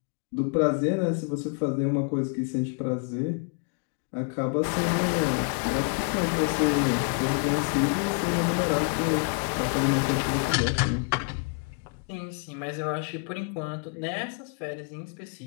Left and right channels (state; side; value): quieter; right; 37.7 dB